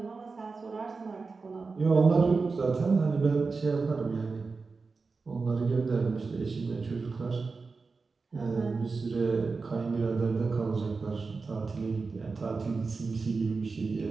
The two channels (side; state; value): left; quieter; 4.3 dB